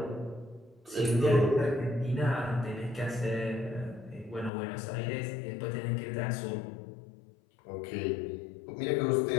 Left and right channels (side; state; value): right; drops out; at 4.5 s